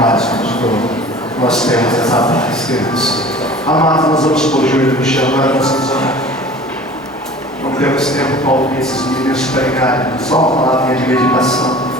vos dou. Nós temos essa paz, Deus. Amados, nós vamos por joelho no chão, nós vamos orar. Não temos tempo para ouvir esses meninos pregarem, só uma palavrinha de meditação.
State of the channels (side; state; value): both; normal; correlation 0.43